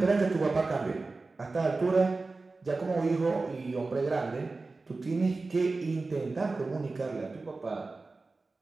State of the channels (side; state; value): left; quieter; 3.6 dB